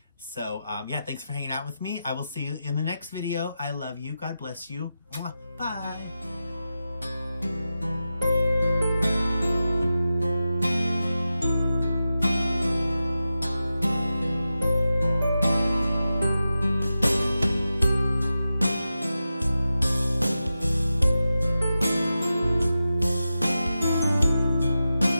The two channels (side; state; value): both; inverted; correlation -0.91